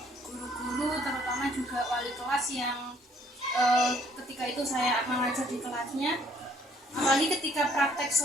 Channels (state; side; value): normal; both; correlation 0.62